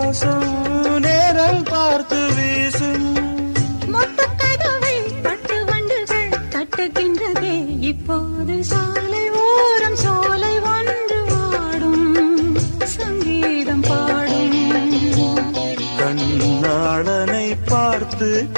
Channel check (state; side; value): inverted; both; correlation -1.00